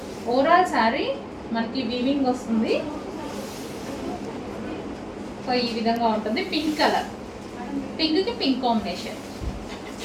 ఓవరాల్ శారీ మనకి వీవింగ్ వస్తుంది. సో ఈ విధంగా ఉంటుంది. పింక్ కలర్, పింక్కి pink combination,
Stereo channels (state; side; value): identical; both; correlation 1.00